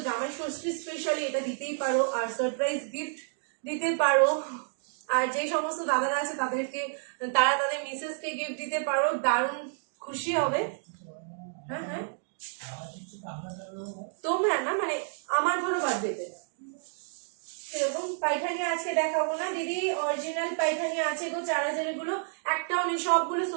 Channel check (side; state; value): left; silent; digital silence